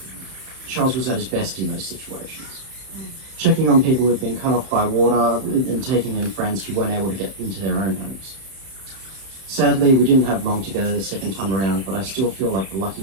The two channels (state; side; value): late; left; 31 ms